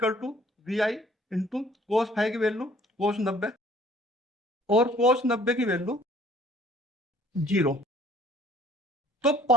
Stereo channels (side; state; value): both; normal; correlation 0.56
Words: to V I into cos five की वैल्यू कोस 90 और कोस 90 की वैल्यू 0, तो